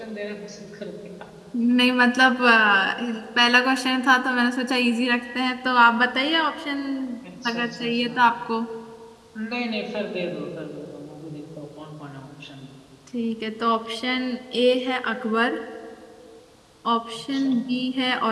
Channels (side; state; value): both; identical; correlation 1.00